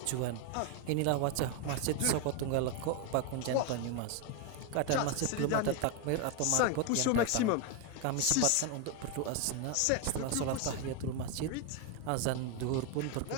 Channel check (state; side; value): different; both; correlation 0.01